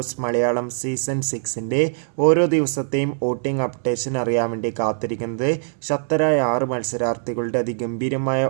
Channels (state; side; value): silent; left; digital silence